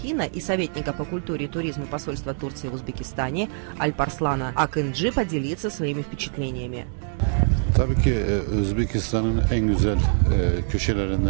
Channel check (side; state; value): left; silent; 62 dB below the other